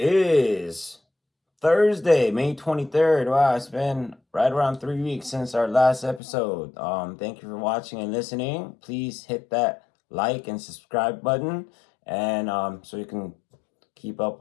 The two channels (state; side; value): drops out; right; at 6.2 s